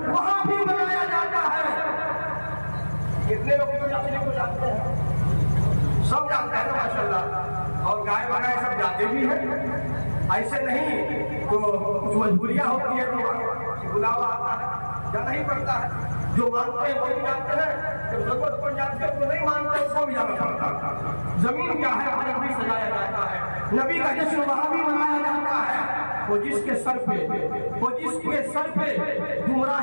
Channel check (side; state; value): both; inverted; correlation -1.00